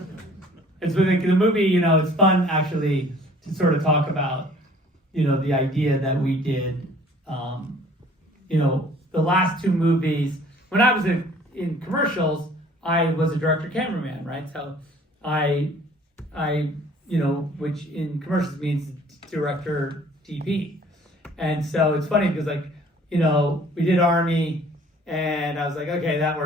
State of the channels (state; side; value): normal; both; correlation 0.54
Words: It's with the movie, you know, it's fun actually to sort of talk about, you know, the idea that we did, you know, the last two movies. When I was in commercials, I was a director cameraman, right? So I, you know, which in commercials means director DP. And so it's funny because, like, you know, we did Army and I was like, okay, that